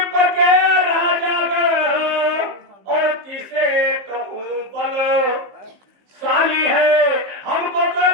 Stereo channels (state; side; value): late; left; 15 ms